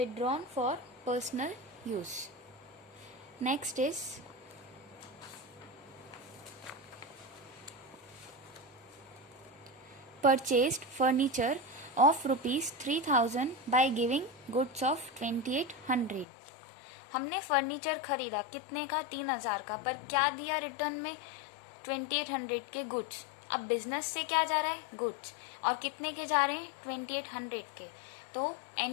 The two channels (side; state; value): right; drops out; at 16.2 s